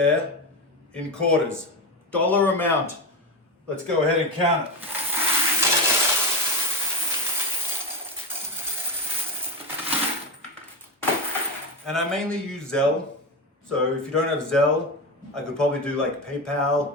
in quarters. Dollar amount. Let's go ahead and count it. And I mainly use Zelle. So if you don't have Zelle, I could probably do like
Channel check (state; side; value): normal; both; correlation 0.15